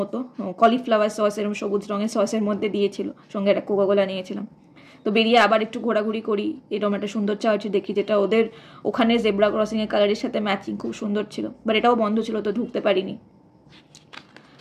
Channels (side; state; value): both; identical; correlation 1.00